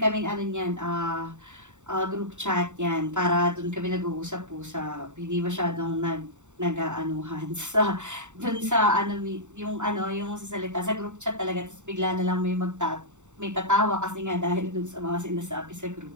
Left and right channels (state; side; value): late; left; 0.84 ms